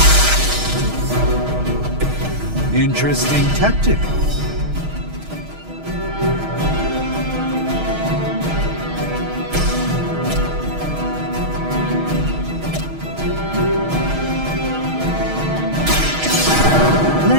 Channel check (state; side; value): late; left; 6.4 ms